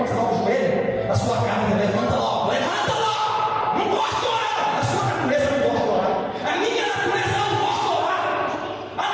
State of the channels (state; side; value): identical; both; correlation 1.00